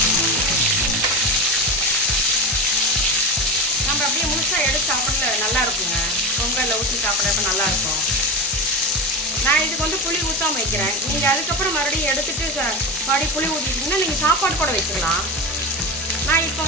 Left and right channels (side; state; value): both; normal; correlation 0.22